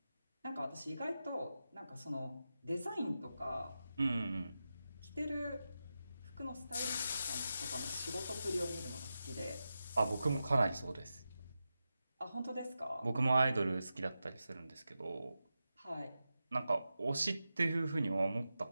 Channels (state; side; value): inverted; both; correlation -0.91